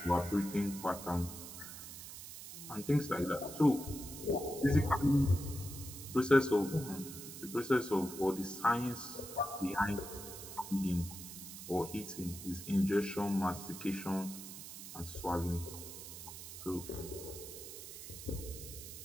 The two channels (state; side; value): noise; right; hiss, 11 dB below the sound